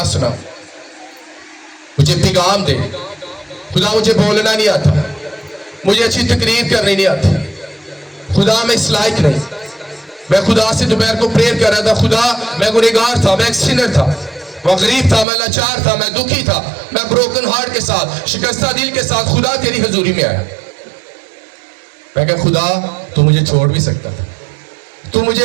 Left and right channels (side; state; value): left; drops out; at 15.2 s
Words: سنا، مجھے پیغام دے خدا، مجھے بولنا نہیں آتا، مجھے اچھی تقریر کرنی نہیں آتی، خدا میں اس لائق نہیں۔ میں خدا سے دوپہر کو پریئر کر رہا تھا، خدا میں گنہگار تھا، میں ایک سینر تھا، میں غریب تھا، میں لاچار تھا، میں دکھی تھا، میں بروکن ہارٹ کے ساتھ، شکستہ دل کے ساتھ خدا تیری حضوری میں آیا۔ میں کہا خدا تو مجھے چھوڑ بھی سکتا تھا، تو